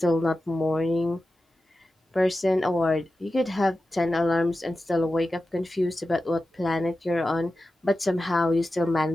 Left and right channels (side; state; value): both; normal; correlation 0.93